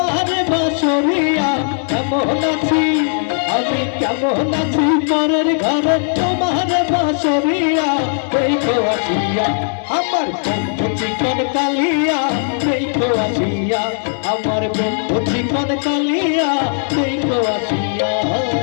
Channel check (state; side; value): silent; right; 68 dB below the other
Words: বাসরিয়া কেমন আছি আমি কেমন আছি পরের ঘরে তোমার বাসরিয়া দেখো আসিয়া আমার বন্ধু চিকন কালিয়া দেখো আসিয়া আমার বন্ধু চিকন কালিয়া দেখো আসিয়া